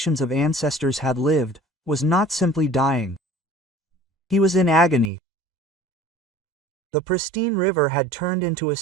of ancestors had lived, was not simply dying. He was in agony. The pristine river had turned into a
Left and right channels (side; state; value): left; drops out; at 5.1 s